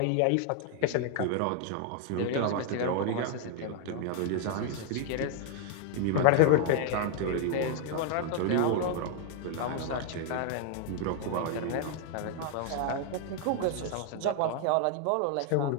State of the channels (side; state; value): both; different; correlation 0.00